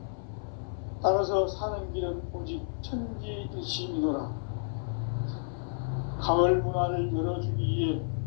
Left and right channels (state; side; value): silent; right; 57 dB below the other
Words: 따라서 사는 길은 오직 천지일심이노라. 가을 문화를 열어주기 위해